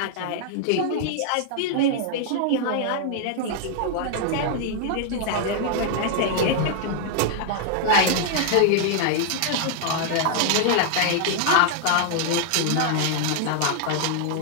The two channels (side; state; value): both; different; correlation 0.00